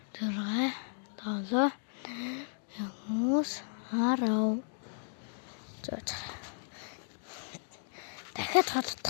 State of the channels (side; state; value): right; silent; digital silence